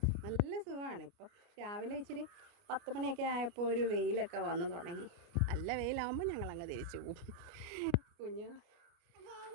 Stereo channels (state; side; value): late; left; 29 ms